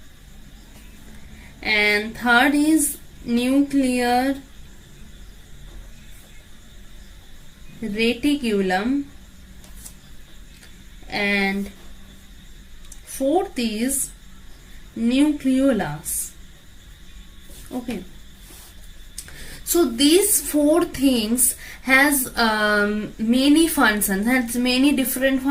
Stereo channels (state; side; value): identical; both; correlation 1.00